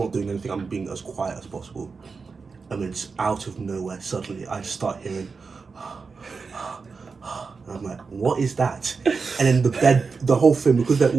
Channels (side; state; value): left; quieter; 4.8 dB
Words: doing anything. I'm being as quiet as possible. And then it's out of nowhere. Suddenly, I just start hearing... And I'm like, what is that? And then the bed, the whole thing, because they're